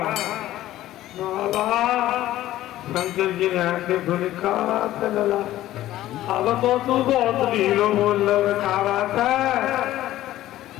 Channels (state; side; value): quieter; right; 14.4 dB